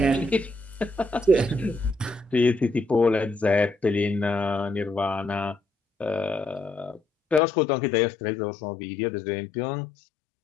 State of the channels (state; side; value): drops out; right; at 7.4 s